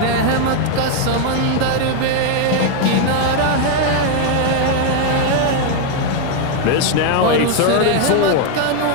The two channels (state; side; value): different; both; correlation 0.00